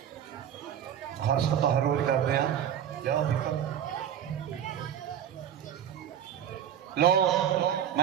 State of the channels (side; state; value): left; quieter; 9.7 dB